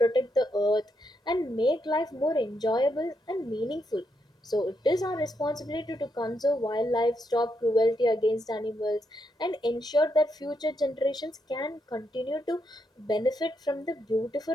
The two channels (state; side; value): normal; both; correlation 0.80